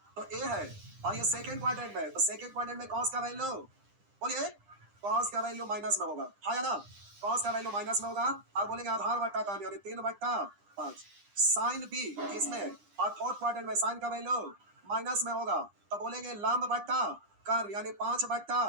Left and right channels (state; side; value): late; left; 9.9 ms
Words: तो A है और ये सेकेंड क्वाड्रेंट में है, तो सेकेंड क्वाड्रेंट में cos का वैल्यू, बोलिए cos का वैल्यू माइनस में होगा, हाँ या ना, cos का वैल्यू माइनस में होगा। और बोलेंगे आधार बट्टा कर्ण यानी 3/5, साइन बी इसमें और फोर्थ क्वाड्रेंट में साइन का वैल्यू माइनस में होगा, तो बोलेंगे लंब बट्टा कर्ण यानी